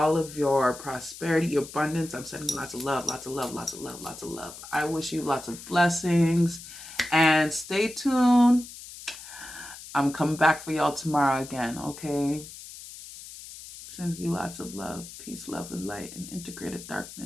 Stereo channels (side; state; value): left; noise; hiss, 14 dB below the sound